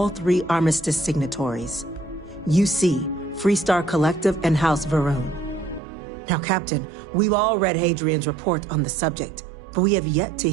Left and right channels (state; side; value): drops out; left; at 5.8 s